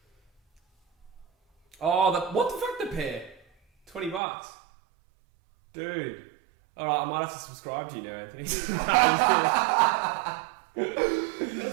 Oh, what the fuck, the pair? $20. Dude. Alright, I might have to subscribe to you now, Anthony.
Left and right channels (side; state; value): left; drops out; at 4.2 s